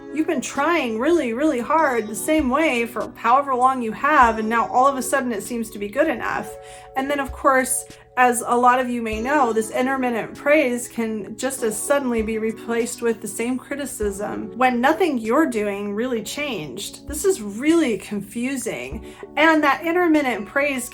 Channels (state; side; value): identical; both; correlation 1.00